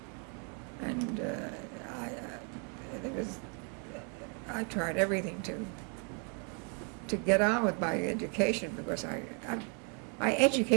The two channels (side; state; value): left; quieter; 39.1 dB